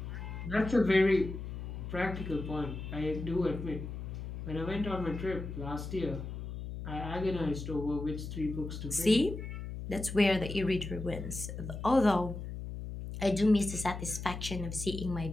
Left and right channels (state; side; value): noise; left; hum, 7 dB below the sound